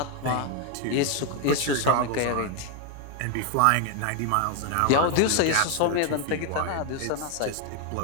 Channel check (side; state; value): both; different; correlation 0.01